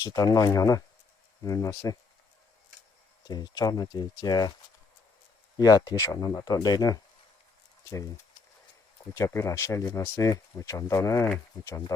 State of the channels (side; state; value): right; quieter; 4.4 dB